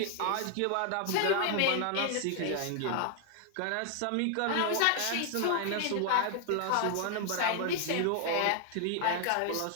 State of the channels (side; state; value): both; different; correlation 0.00